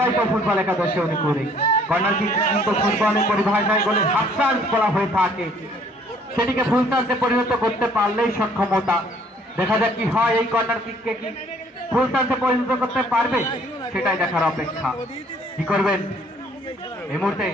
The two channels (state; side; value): normal; both; correlation 0.60